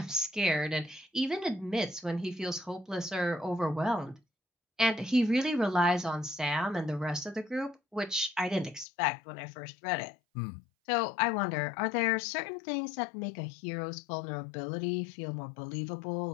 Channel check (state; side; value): drops out; right; at 8.8 s